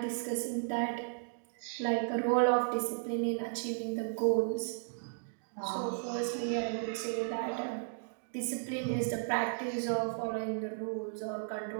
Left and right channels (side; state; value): left; silent; digital silence